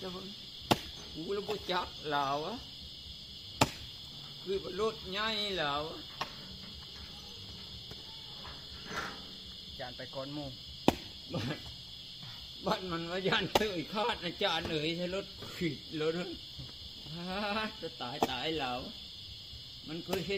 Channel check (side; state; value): both; normal; correlation 0.97